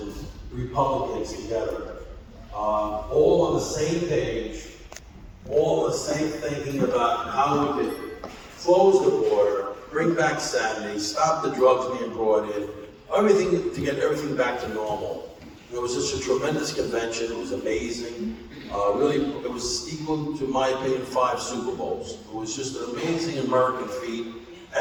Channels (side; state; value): both; identical; correlation 1.00